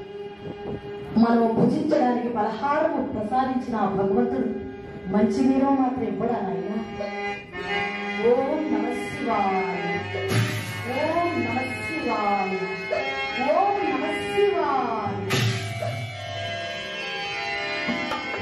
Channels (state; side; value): identical; both; correlation 1.00